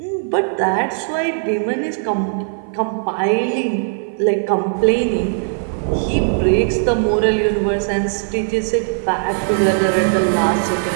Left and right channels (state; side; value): silent; left; 56 dB below the other